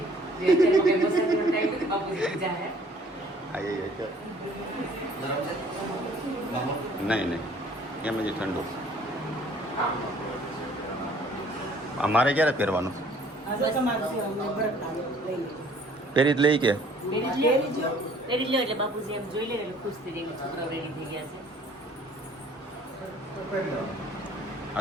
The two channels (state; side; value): normal; both; correlation 0.56